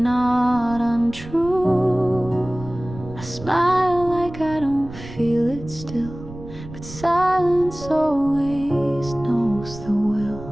untrue. I smile like I don't feel it still, but silence always knows the will.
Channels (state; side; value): noise; right; rumble, 14 dB below the sound